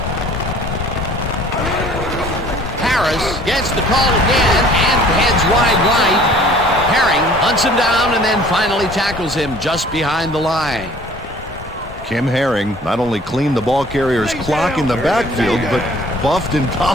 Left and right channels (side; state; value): both; normal; correlation 0.52